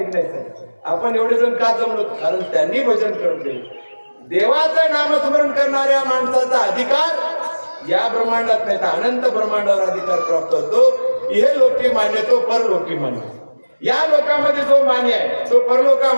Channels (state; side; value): inverted; both; correlation -1.00